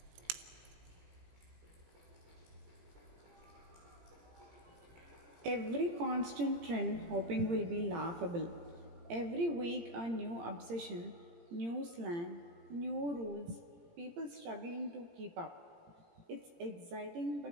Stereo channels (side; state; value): left; late; 17 ms